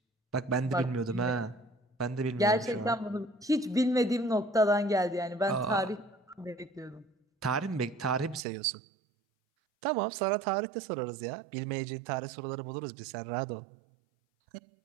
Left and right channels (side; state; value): left; drops out; at 8.5 s